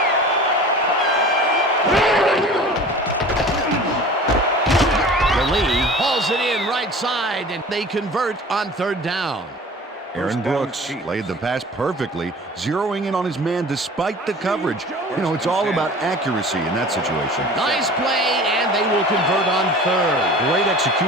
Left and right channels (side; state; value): both; normal; correlation 0.41